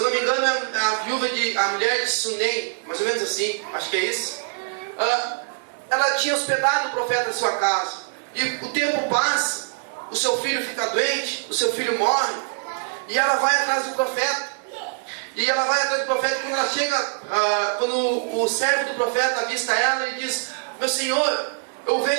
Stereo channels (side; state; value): left; silent; digital silence